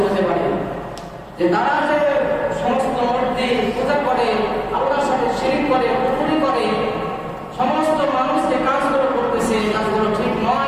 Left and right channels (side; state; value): both; identical; correlation 1.00